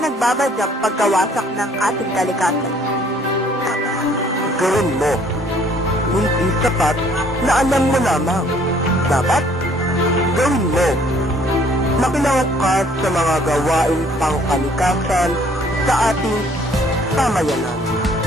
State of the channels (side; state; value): both; normal; correlation 0.60